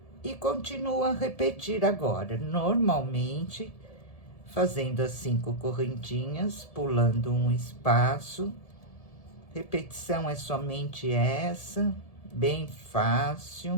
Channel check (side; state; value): right; late; 1.7 ms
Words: E continuo a repetir agora, normalmente, fazendo as 5 correntinhas, pulando um espaço. Repetição é somente essa, bem